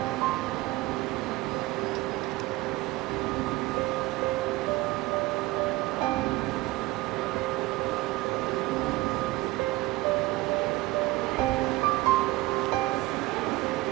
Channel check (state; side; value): quieter; left; 19.0 dB